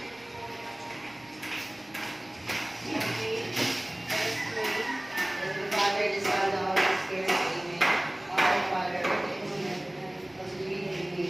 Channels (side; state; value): right; noise; rumble, 30 dB below the sound